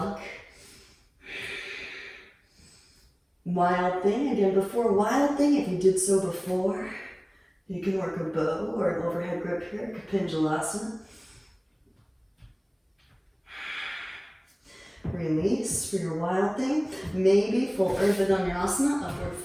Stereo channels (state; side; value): identical; both; correlation 1.00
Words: Wild thing, again, before wild thing, if you did so before, you can work a bow or an overhead grip here, Kapinjalasana. Release for your wild thing. Maybe full Urdhva Dhanurasana, upward